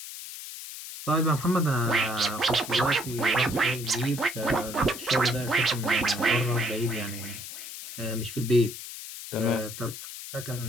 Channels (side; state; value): left; noise; hiss, 10 dB below the sound